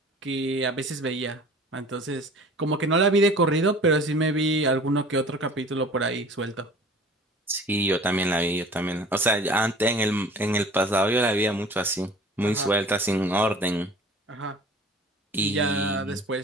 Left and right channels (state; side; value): normal; both; correlation 0.45